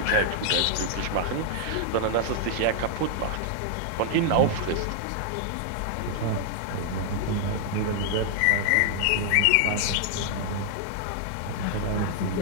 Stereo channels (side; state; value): both; different; correlation -0.01